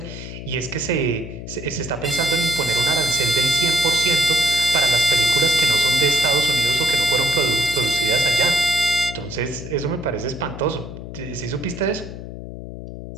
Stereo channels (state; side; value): noise; left; hum, 11 dB below the sound